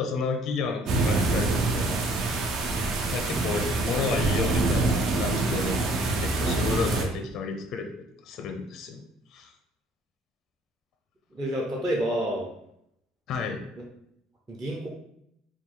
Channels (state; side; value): normal; both; correlation 0.59